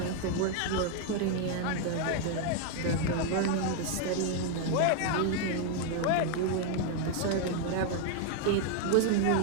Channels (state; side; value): different; both; correlation 0.00